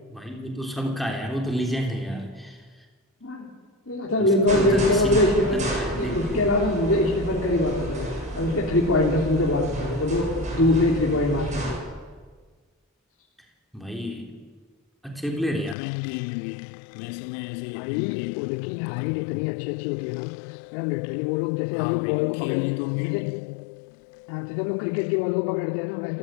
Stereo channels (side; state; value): right; drops out; at 15.8 s